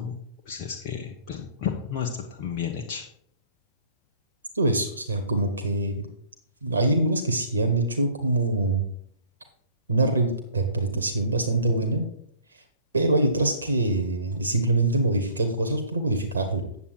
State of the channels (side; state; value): both; inverted; correlation -0.54